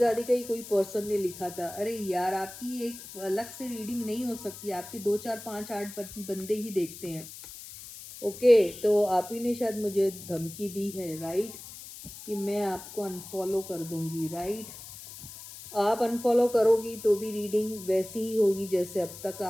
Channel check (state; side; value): noise; left; hiss, 14 dB below the sound